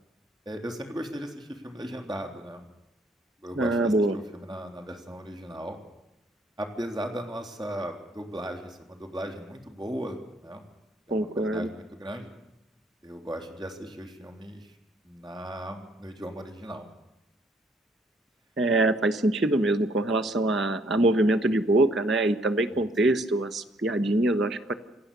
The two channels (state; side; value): normal; both; correlation 0.66